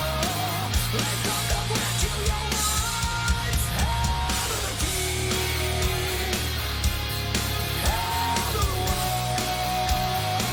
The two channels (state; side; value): identical; both; correlation 1.00